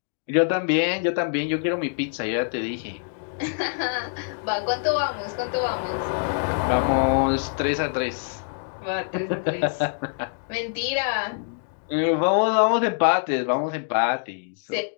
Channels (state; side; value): silent; right; digital silence